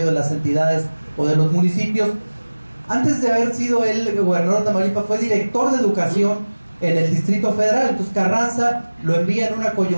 de las entidades o de los municipios. Antes de haber sido el gobernador de Tamaulipas, fue director de educación en el Distrito Federal. Entonces Carranza lo envía en una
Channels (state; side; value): inverted; both; correlation -1.00